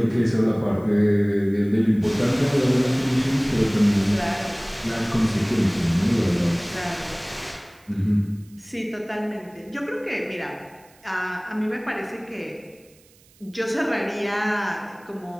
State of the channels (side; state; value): right; noise; hiss, 29 dB below the sound